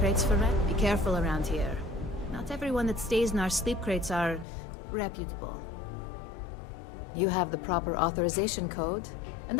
for rent? Be careful around here. Not everyone that stays in our sleep crates are reputable. You have the proper authorization code, and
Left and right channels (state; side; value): drops out; right; at 4.5 s